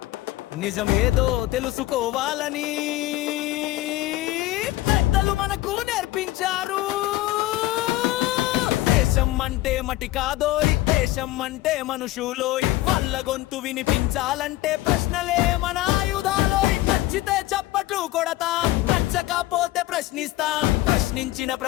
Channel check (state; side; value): quieter; right; 16.9 dB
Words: నిజమేదో తెలుసుకోవాలని పెద్దలు మనకు నేర్పించారు. దేశం అంటే మటి కాదోయ్, దేశం అంటే మనుషులోయ్. వాళ్ళ గొంతు వినిపించాలంటే ప్రశ్నలే మన ఆయుధాలోయ్. నచ్చితే చప్పట్లు కొడతాం, నచ్చకపోతే ప్రశ్నిస్తాం. ప్రశ్నించిన